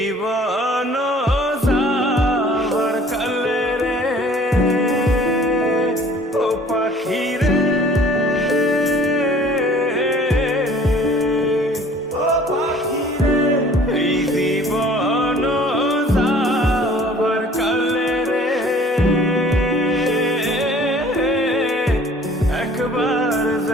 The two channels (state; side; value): normal; both; correlation 0.52